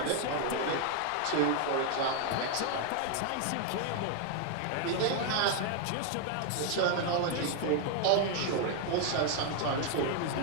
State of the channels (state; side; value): different; both; correlation 0.00